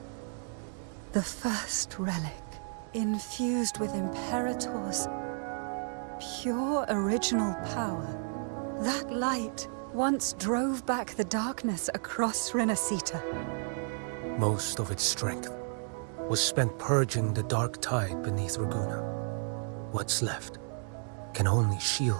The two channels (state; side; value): silent; left; 56 dB below the other